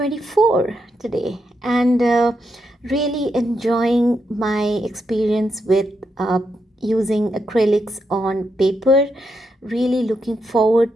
today, and really enjoying my experience with using acrylics on paper. Really looking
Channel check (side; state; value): both; normal; correlation 0.82